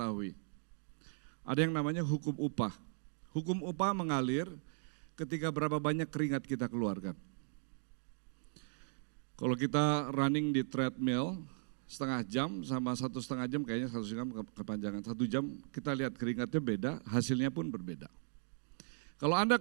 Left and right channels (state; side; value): silent; left; digital silence